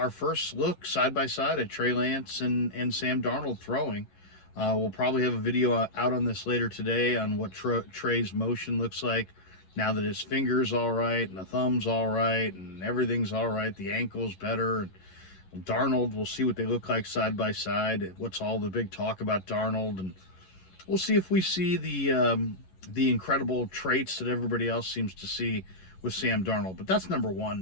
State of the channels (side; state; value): right; late; 11 ms